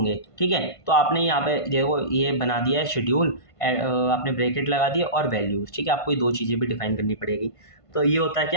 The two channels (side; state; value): right; late; 1.5 ms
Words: ठीक है। तो आपने यहाँ पे देखो ये बना दिया है शेड्यूल, आपने ब्रैकेट लगा दिया और वैल्यूज, ठीक है। आपको ये दो चीज़ें भी डिफाइन करनी पड़ेगी। तो ये होता है